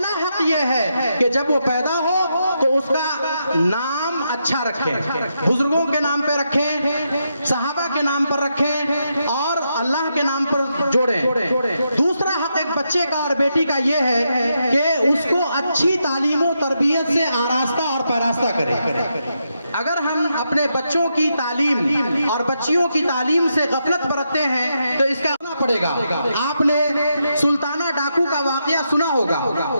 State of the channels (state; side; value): inverted; both; correlation -0.82